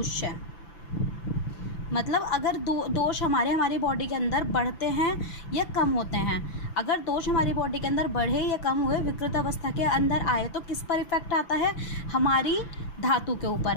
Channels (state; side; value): late; right; 6.0 ms